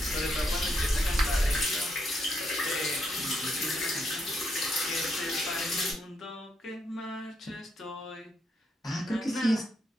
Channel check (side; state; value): both; normal; correlation 0.77